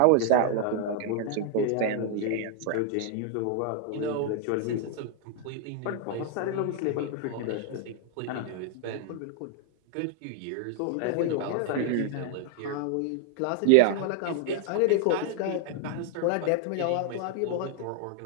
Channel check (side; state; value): both; different; correlation 0.00